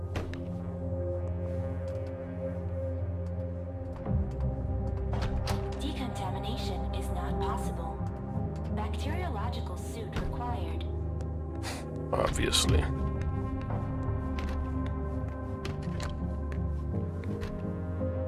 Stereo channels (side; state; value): both; identical; correlation 1.00